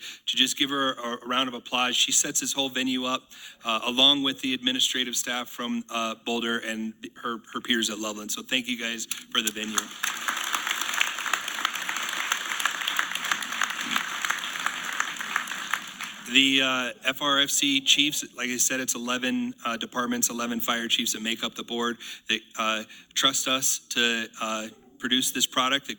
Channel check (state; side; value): identical; both; correlation 1.00